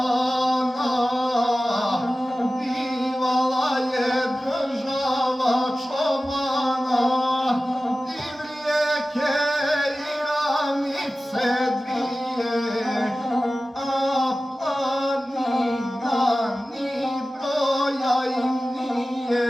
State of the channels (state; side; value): normal; both; correlation 0.95